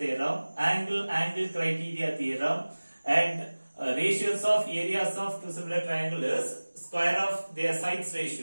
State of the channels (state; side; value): inverted; both; correlation -1.00